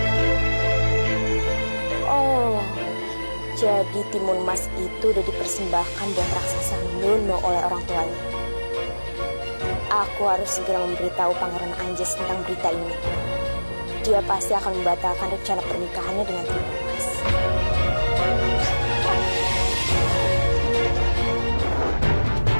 Oh, jadi Timun Mas itu udah dipersembahkan buat raksasa Gendono oleh orang tuanya. Aku harus segera memberitahu Pangeran Anjas tentang berita ini. Dia pasti akan membatalkan rencana pernikahannya dengan Timun Mas.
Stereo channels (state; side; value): inverted; both; correlation -1.00